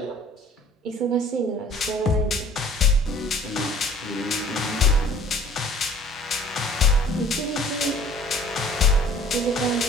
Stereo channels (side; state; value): both; normal; correlation 0.50